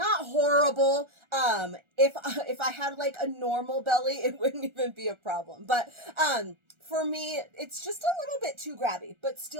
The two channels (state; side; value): late; left; 1.4 ms